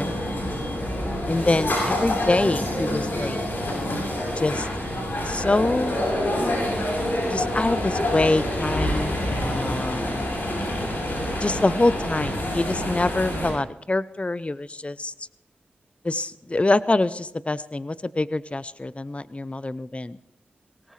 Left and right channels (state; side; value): normal; both; correlation 0.88